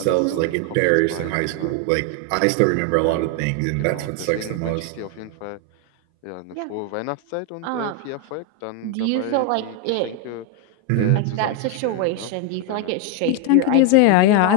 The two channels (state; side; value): different; both; correlation 0.01